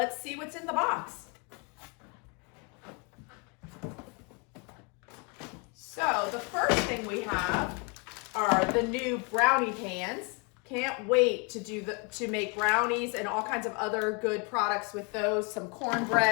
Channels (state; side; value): quieter; right; 32.8 dB